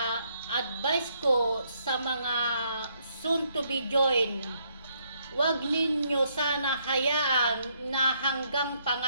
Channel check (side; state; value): both; inverted; correlation -0.72